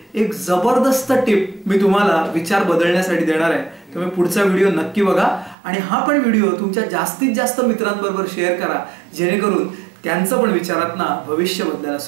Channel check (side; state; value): left; drops out; at 5.6 s